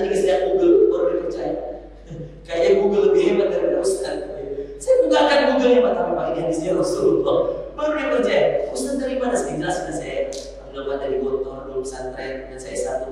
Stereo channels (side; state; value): both; identical; correlation 1.00